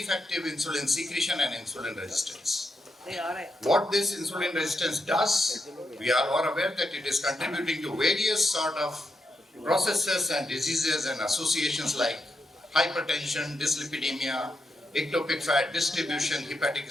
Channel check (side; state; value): both; normal; correlation 0.84